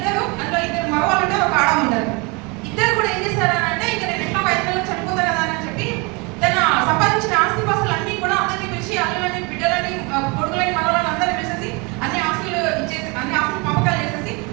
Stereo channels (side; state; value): left; quieter; 28.9 dB